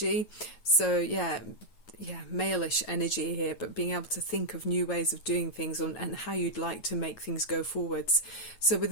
So yeah, male-ish energy here, but being able to think of new ways of doing things and how you'd like to make things go forwards. So with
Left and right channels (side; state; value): right; late; 9.2 ms